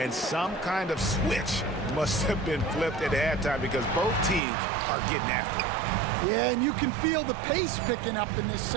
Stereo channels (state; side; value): drops out; left; at 4.4 s